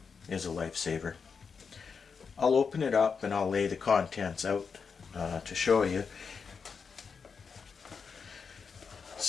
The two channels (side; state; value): right; quieter; 5.7 dB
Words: is a lifesaver. I'll open it up and I'll lay the contents out to show you.